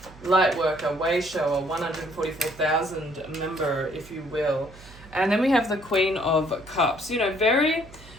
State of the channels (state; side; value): noise; right; hum, 21 dB below the sound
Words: light worker, way shower, 144,000 member, if you will. And then we have the Queen of Cups. Very